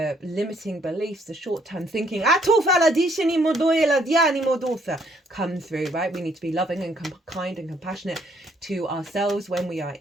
limiting beliefs, the short-term thinking come through, right? We need to be loving and kind and compassionate to ourselves when we are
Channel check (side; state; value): both; normal; correlation 0.67